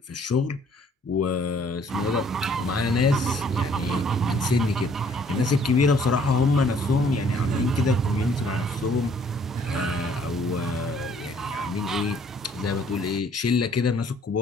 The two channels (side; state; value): both; normal; correlation 0.60